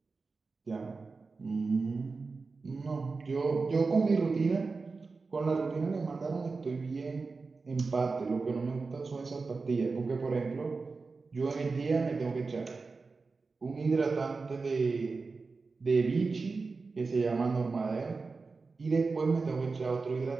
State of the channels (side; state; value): left; quieter; 4.2 dB